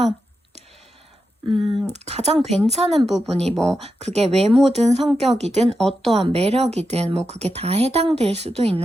가장 괜찮은 부분이 뭐 그게 외모든 성격이든 어떠한 매력이든 뭐 그게 다 해당될 수도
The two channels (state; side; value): normal; both; correlation 0.88